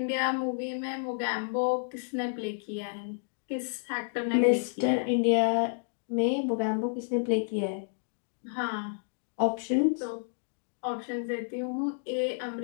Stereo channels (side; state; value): right; silent; digital silence